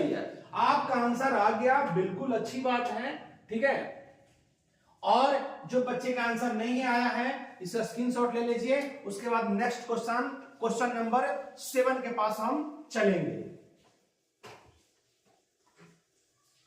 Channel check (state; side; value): identical; both; correlation 1.00